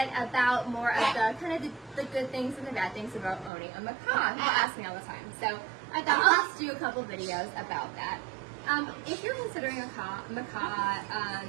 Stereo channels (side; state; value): left; drops out; at 3.5 s